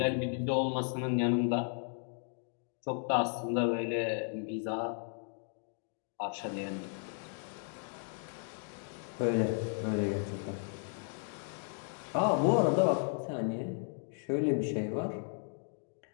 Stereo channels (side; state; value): right; silent; 55 dB below the other